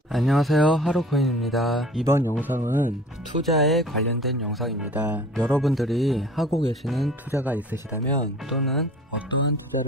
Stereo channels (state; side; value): normal; both; correlation 0.46